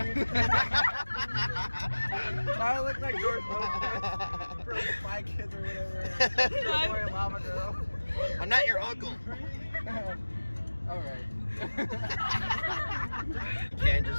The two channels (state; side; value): inverted; both; correlation -1.00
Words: I look like George Lopez from Spy Kids or whatever. Or Lava Girl. I'm not your uncle. All right. Can't